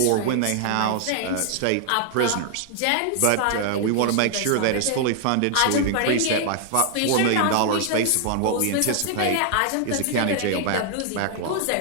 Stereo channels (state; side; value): different; both; correlation 0.00